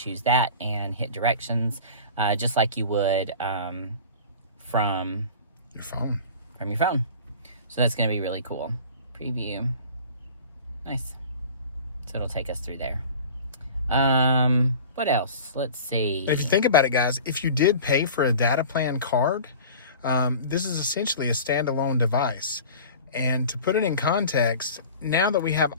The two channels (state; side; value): inverted; both; correlation -0.40